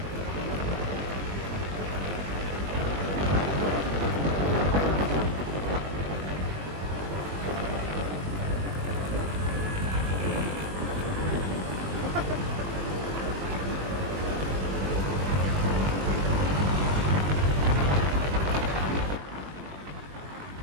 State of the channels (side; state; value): left; late; 21 ms